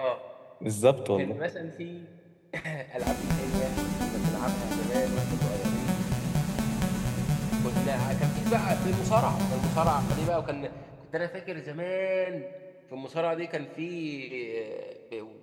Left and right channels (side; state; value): both; identical; correlation 1.00